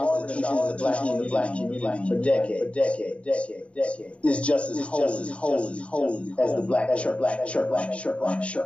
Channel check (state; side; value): late; right; 0.062 ms